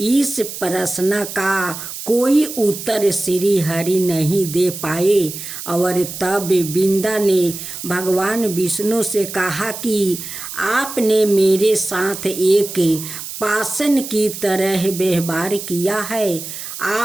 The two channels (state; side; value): noise; right; hiss, 9 dB below the sound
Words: प्रश्न का कोई उत्तर श्री हरि नहीं दे पाए और तब बिंदा ने भगवान विष्णु से कहा कि आपने मेरे साथ एक पाषाण की तरह व्यवहार किया है।